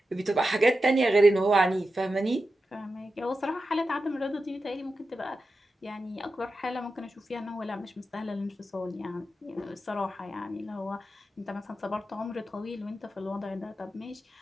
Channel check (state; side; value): normal; both; correlation 0.91